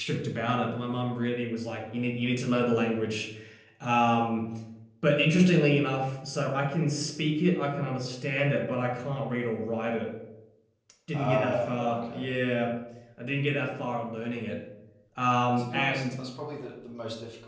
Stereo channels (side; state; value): both; identical; correlation 1.00